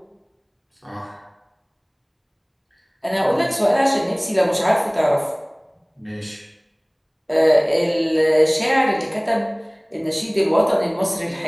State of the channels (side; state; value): both; identical; correlation 1.00